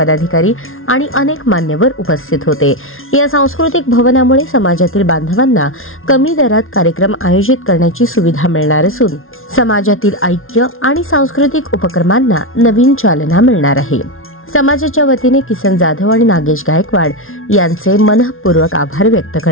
आणि अनेक मान्यवर उपस्थित होते। या सांस्कृतिक भवनामुळे समाजातील बांधवांना कमी दरात कार्यक्रम आयोजित करण्याची सुविधा मिळणार असून समाजातील ऐक्य आणि सांस्कृतिक उपक्रमांना नवीन चालना मिळणार आहे। समाजाच्या वतीने किसन जाधव आणि नागेश गायकवाड यांचे मनपूर्वक आभार व्यक्त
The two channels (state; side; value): late; right; 0.61 ms